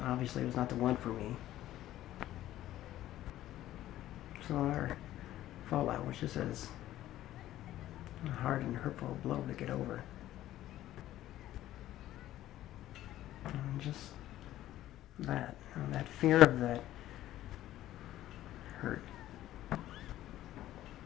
obviously was not the one for me. So our fallout was just as a hard and hurtful blow to get over. And just that, that fear of that hurt.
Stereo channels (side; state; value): right; quieter; 13.8 dB